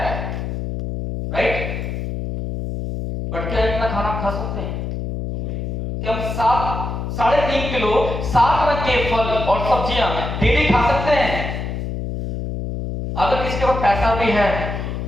राइट। बट क्या इतना खाना खा सकते हैं कि हम 3.5 किलो 7 रंग के फल और सब्जियां डेली खा सकते हैं? अगर किसके पास पैसा भी है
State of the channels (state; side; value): noise; left; hum, 4 dB below the sound